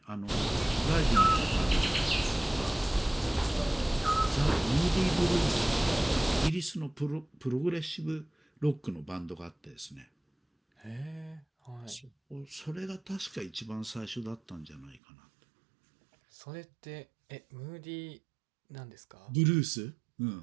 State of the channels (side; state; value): left; drops out; at 15.0 s